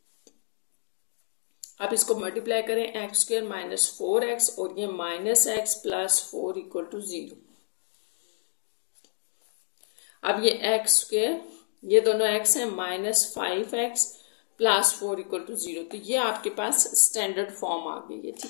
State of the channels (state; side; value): silent; right; digital silence